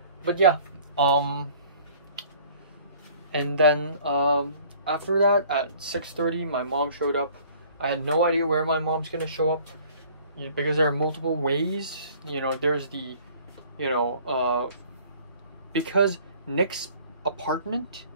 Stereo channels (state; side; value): inverted; both; correlation -0.52